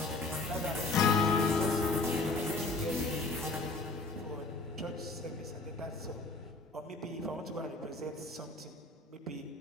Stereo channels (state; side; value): quieter; right; 3.3 dB